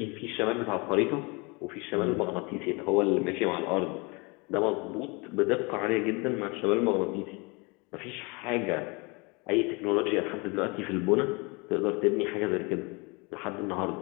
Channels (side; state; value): right; quieter; 28.5 dB